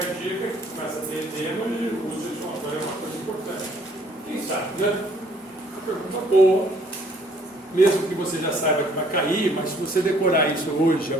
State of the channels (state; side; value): normal; both; correlation 0.61